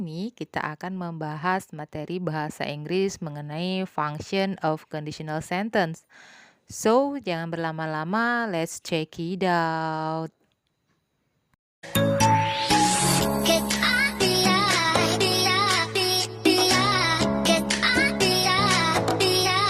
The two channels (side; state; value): both; identical; correlation 1.00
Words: kita akan membahas materi bahasa Inggris mengenai function of conditional sentence. So, jangan berlama-lama, let's check it out.